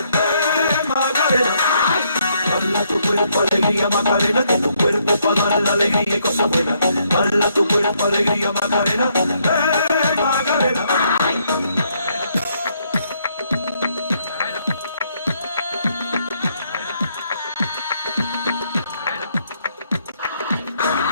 Macarena. Dala tu cuerpo alegría Macarena, que tu cuerpo es para dar la alegría y cosas buenas. Dala tu cuerpo alegría Macarena, Macarena.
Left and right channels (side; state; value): both; inverted; correlation -0.72